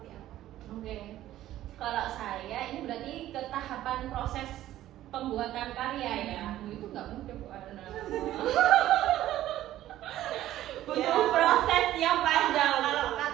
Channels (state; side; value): quieter; left; 13.7 dB